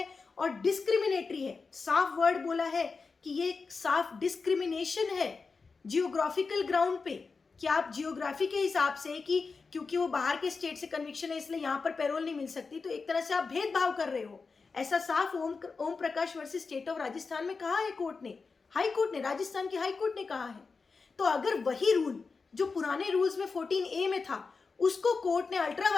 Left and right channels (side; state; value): right; quieter; 4.6 dB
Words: और डिस्क्रिमिनेटरी है। साफ वर्ड बोला है कि ये साफ डिस्क्रिमिनेशन है जियोग्राफिकल ग्राउंड पे, कि आप जियोग्राफी के हिसाब से कि क्योंकि वो बाहर के स्टेट से कन्विक्शन है इसलिए यहाँ पर पैरोल नहीं मिल सकती, तो एक तरह से आप भेदभाव कर रहे हो। ऐसा साफ Om Prakash versus state of Rajasthan में कहा है कोर्ट ने, हाई कोर्ट ने, राजस्थान की हाई कोर्ट ने कहा है। तो अगर वही रूल जो पुराने रूल्स में 14A में था, उसको कोर्ट ने अल्ट्रा